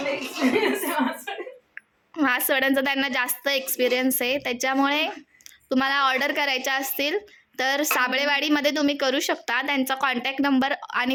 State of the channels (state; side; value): identical; both; correlation 1.00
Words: मासवड्यांचा त्यांना जास्त एक्सपिरियन्स आहे. त्याच्यामुळे तुम्हाला ऑर्डर करायच्या असतील तर साबळेवाडीमध्ये तुम्ही करू शकता. त्यांचा कॉन्टॅक्ट नंबर आणि